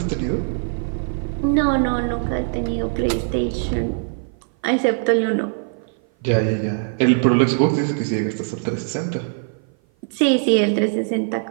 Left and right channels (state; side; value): silent; left; 56 dB below the other